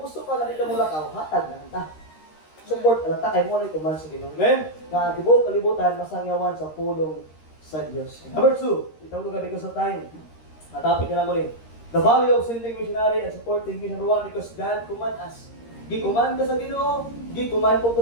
gusto ka na dito mo lakaw, hatag na ta. Support lang ta, kay mo na ikuman sa Ginoo. Amen? Nga tibuok kalibutan, masangyawan sa pulong sa Diyos. Number 2, itong lugar because of time. Natapit ka na mo rin. The value of sending missionary and supporting mission. Number 1, because God command us. Gikuman ka sa Ginoo, gikuman po ko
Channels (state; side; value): late; right; 13 ms